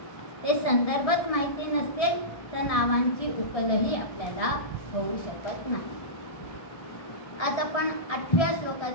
ते संदर्भच माहिती नसेल तर नावांची उकलही आपल्याला होऊ शकत नाही. आज आपण 8व्या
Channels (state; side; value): late; right; 1.6 ms